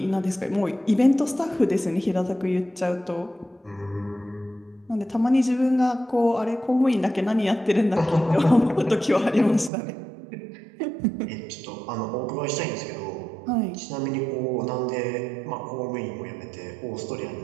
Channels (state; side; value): drops out; left; at 9.7 s